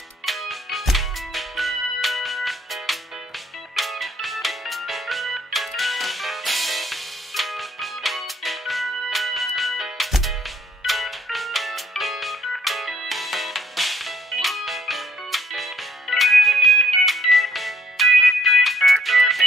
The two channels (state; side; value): normal; both; correlation 0.66